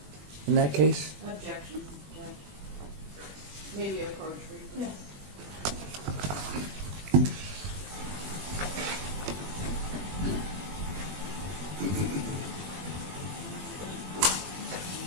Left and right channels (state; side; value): late; left; 21 ms